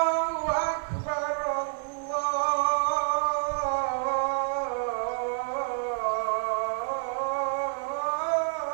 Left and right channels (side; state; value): left; silent; 59 dB below the other